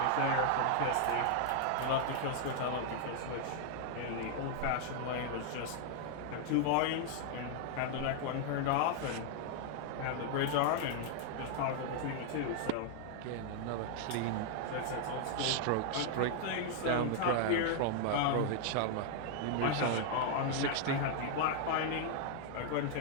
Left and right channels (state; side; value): different; both; correlation 0.00